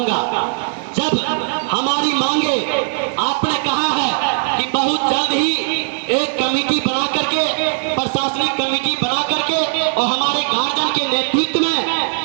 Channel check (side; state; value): left; silent; 62 dB below the other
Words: जब हमारी मांगे, आपने कहा है कि बहुत जल्द ही एक कमेटी बना करके, प्रशासनिक कमेटी बना करके, और हमारे गार्जियन के नेतृत्व